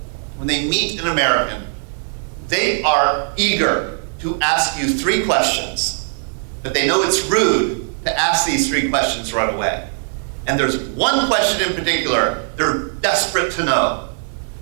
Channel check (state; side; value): silent; left; digital silence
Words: when they meet an American, they are eager to ask you 3 questions, but they know it's rude to ask these 3 questions right away. And there's one question in particular they're desperate to know,